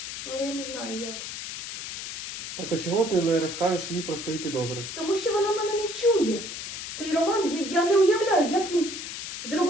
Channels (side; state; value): left; noise; hiss, 7 dB below the sound